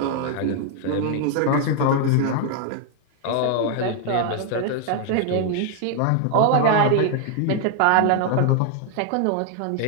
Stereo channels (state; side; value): different; both; correlation 0.00